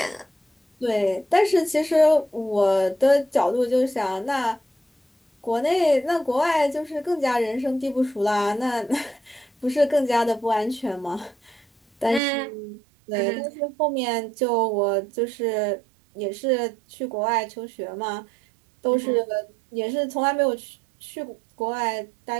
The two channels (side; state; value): left; drops out; at 12.2 s